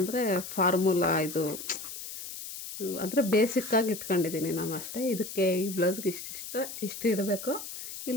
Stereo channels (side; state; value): left; noise; hiss, 10 dB below the sound